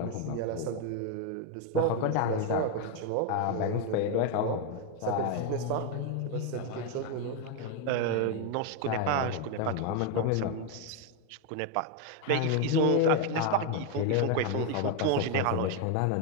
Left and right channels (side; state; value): both; different; correlation 0.01